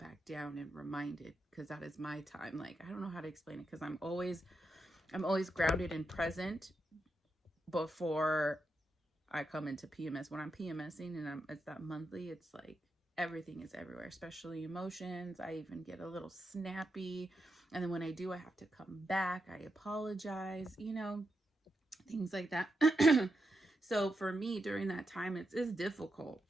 down and reminded, because that is my time. Like, I don't know how to explain it, because I'm always grounded and present before I come into PMS. When I'm PMSing and it's that monthly, it's like everything is everywhere, especially emotions. I even get a little snappy, and then when I do, I have to come back, I apologize, you know, things like that. So for me during that time, it's difficult.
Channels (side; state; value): both; normal; correlation 0.86